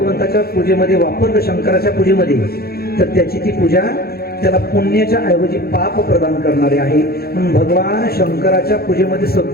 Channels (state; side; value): late; right; 0.45 ms